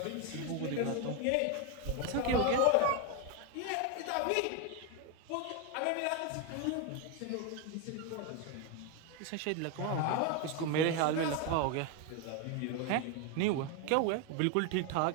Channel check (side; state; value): both; different; correlation 0.01